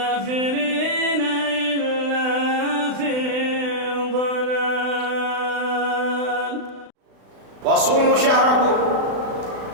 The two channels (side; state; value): left; late; 35 ms